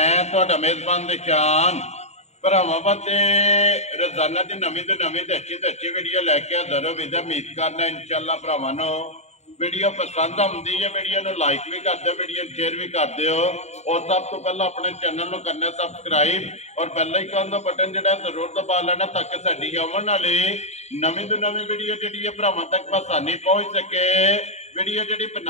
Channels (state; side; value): late; right; 0.32 ms